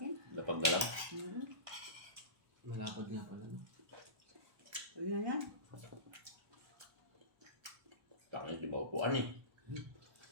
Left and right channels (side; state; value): left; late; 1.3 ms